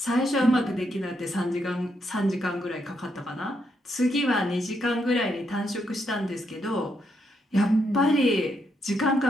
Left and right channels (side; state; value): both; normal; correlation 0.79